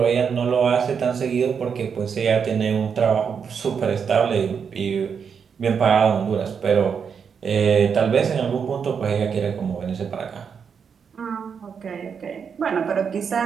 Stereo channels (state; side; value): quieter; left; 6.6 dB